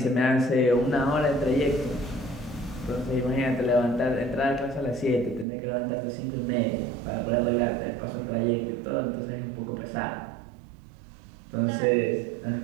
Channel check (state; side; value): drops out; left; at 5.5 s